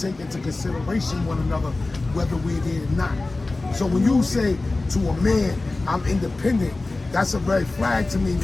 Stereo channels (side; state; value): right; quieter; 3.2 dB